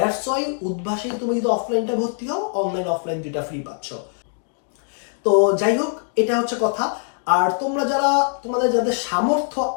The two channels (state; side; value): silent; right; 55 dB below the other